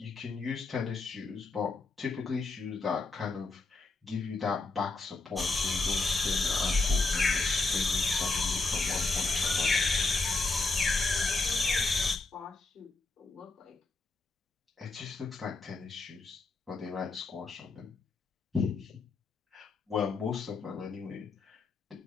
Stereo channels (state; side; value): quieter; right; 3.7 dB